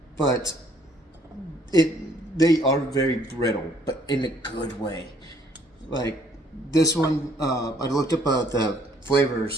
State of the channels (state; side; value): normal; both; correlation 0.63